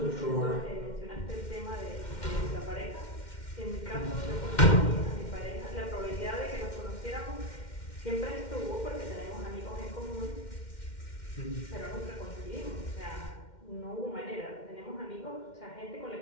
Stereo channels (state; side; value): late; right; 2.1 ms